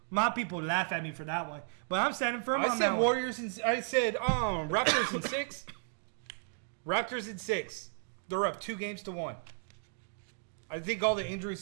laugh at me for that one. But I'm standing firm on that I said one. Warriors, and I said Raptors in 6. Raptors in 6. They're up 2-1. I think all the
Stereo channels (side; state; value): left; silent; digital silence